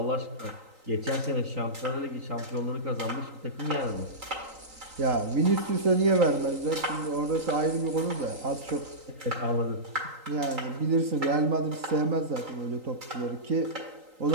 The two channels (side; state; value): left; late; 3.9 ms